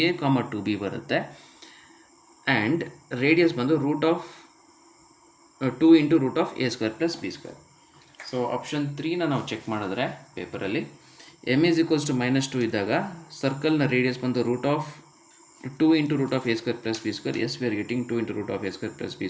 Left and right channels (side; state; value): both; identical; correlation 1.00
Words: comma 2b ಬರುತ್ತೆ. ಆ್ಯಂಡ್ ರೇಡಿಯಸ್ ಬಂದು root of 2 into root of a square plus b square. So option 3ನ ನಾವು ಚೆಕ್ ಮಾಡಿದ್ರೆ ಪೇಪರಲ್ಲಿ m is equals to minus 2 ಇದ್ದಾಗ ಸರ್ಕಲ್ನ ರೇಡಿಯಸ್ ಬಂದು root of 2 into root of a square plus b square. S we are getting 2 into root of a square plus b